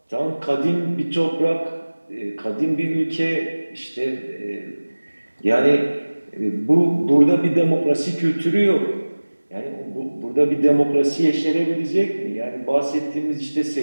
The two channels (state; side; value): inverted; both; correlation -1.00